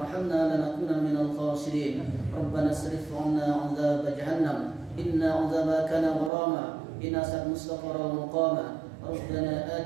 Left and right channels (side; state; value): left; drops out; at 6.3 s